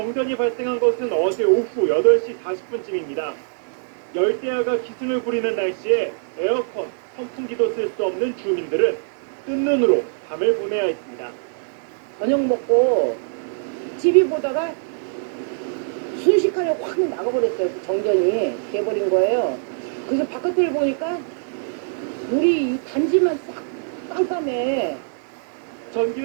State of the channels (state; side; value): silent; left; digital silence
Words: 발생한 것은 어제 오후 8시 40분쯤입니다. 열대야가 기승을 부리는 날씨에 에어컨, 선풍기도 쓸 수 없는 주민들은 뜬 눈으로 밤을 보내야 했습니다. 저녁 먹고 TV 보다가 순식간에 확 나가버렸어요. 정전이 돼버린 거예요. 그래서 바깥을 보니까 우리 이 단지만 싹 깜깜해.